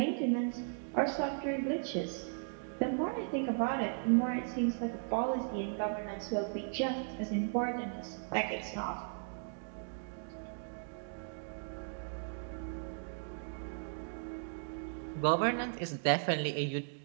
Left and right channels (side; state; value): left; silent; digital silence